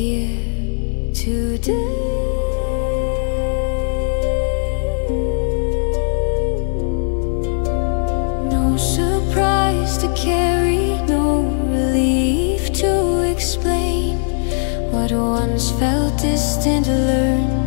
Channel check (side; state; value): right; silent; digital silence